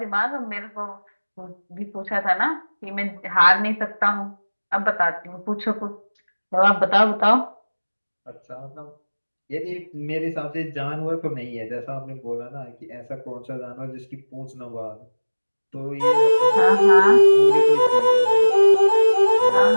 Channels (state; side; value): inverted; both; correlation -1.00